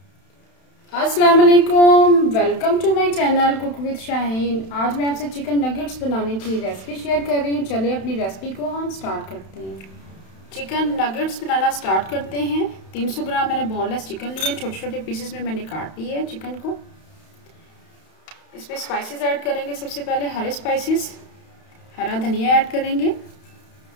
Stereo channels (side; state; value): right; late; 31 ms